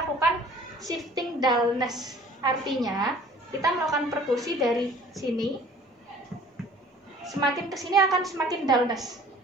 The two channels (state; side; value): normal; both; correlation 0.50